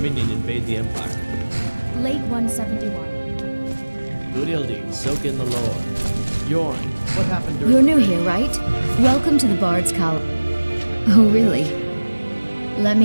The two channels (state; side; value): inverted; both; correlation -1.00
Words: invade the Empire? Late 171. Good Ildi, soak in the lore. Yorn, what happened during... You're new here, right? Welcome to the Bard's Column. Oh, really? Let